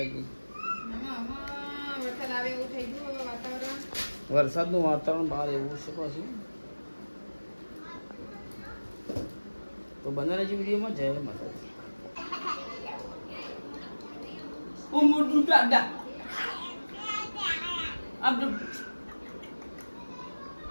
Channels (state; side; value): inverted; both; correlation -1.00